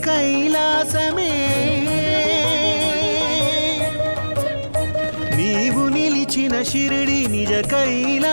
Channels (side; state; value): both; inverted; correlation -1.00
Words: కైలాసమే నీవు నిలిచిన షిరిడి నిజ